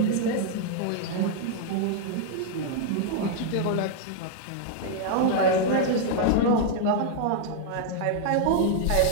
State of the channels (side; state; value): both; different; correlation -0.01